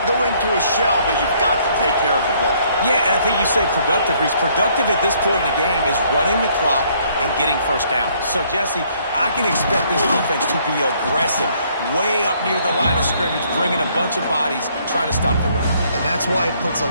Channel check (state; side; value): inverted; both; correlation -0.65